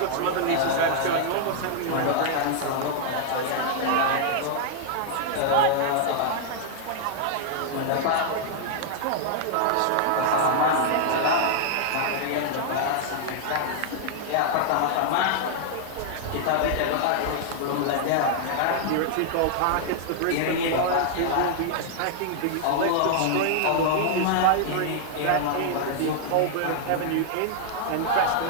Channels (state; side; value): different; both; correlation -0.01